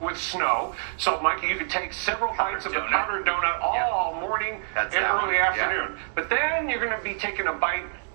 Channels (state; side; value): silent; left; digital silence